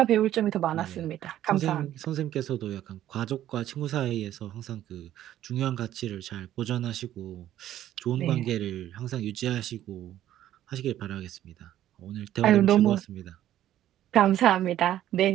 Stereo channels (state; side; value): quieter; left; 12.5 dB